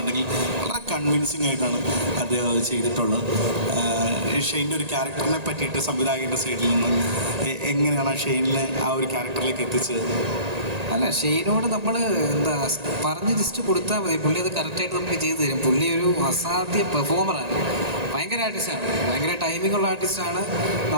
വളരെ കൺവിൻസിങ് ആയിട്ടാണ് അദ്ദേഹം അത് ചെയ്തിട്ടുള്ളത്. ഷെയ്നിൻ്റെ ഒരു ക്യാരക്ടറിനെ പറ്റിയിട്ട് സംവിധായകൻ്റെ സൈഡിൽ നിന്ന് എങ്ങനെയാണ് ആ ഷെയ്നിനെ ആ ഒരു ക്യാരക്ടറിലേക്ക് എത്തിച്ചത്? അല്ല, ഷെയ്നോട് നമ്മൾ പറഞ്ഞ് ജസ്റ്റ് കൊടുത്താൽ മതി, പുള്ളി അത് കറക്റ്റായിട്ട് നമുക്ക് ചെയ്തു തരും. പുള്ളി ഒരു അസാധ്യ പെർഫോമറാണ്, ഭയങ്കര ആർട്ടിസ്റ്റാണ്, ഭയങ്കര ടൈമിങ്ങുള്ള ആർട്ടിസ്റ്റാണ്.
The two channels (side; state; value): left; late; 1.8 ms